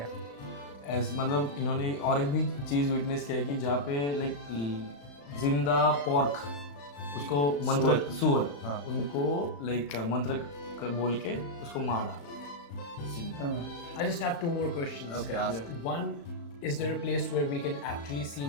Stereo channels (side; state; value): right; late; 35 ms